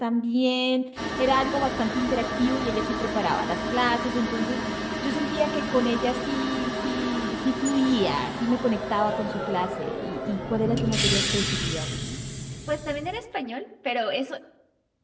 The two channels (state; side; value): identical; both; correlation 1.00